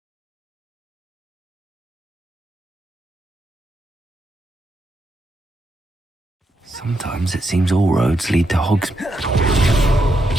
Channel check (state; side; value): normal; both; correlation 0.81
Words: Sometimes it seems all roads lead to Hogsmeade.